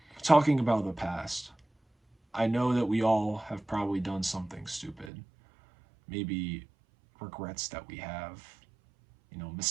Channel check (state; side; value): drops out; left; at 5.1 s